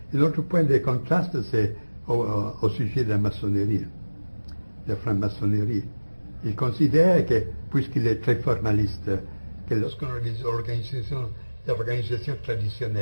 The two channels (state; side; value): inverted; both; correlation -1.00